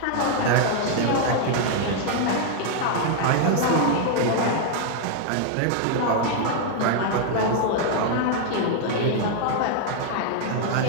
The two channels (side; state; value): both; different; correlation 0.00